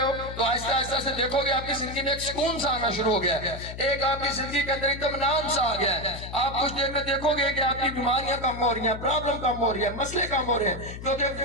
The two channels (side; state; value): left; noise; hum, 10 dB below the sound